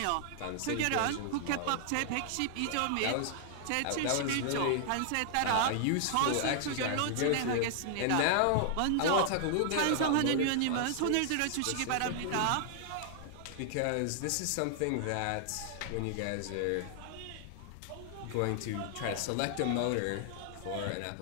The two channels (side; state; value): both; different; correlation -0.01